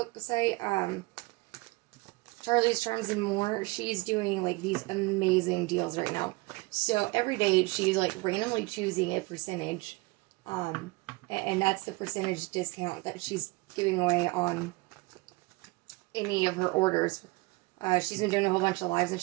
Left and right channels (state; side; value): quieter; left; 24.2 dB